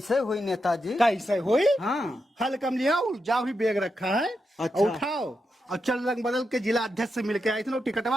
हुई नेताजी? कैसे हुई? हाँ, हल कम लिया जाओ ही बैग रखा है। अच्छा। उठाओ और चल रंग बदल के जिला अध्यक्ष से मिलके आए थे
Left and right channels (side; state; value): both; normal; correlation 0.86